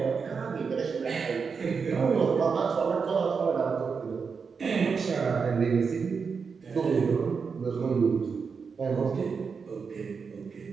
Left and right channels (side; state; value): left; quieter; 5.5 dB